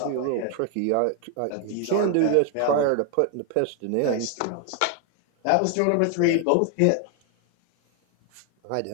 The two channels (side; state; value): both; different; correlation 0.00